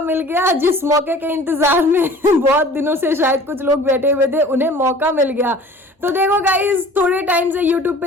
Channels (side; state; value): both; normal; correlation 0.46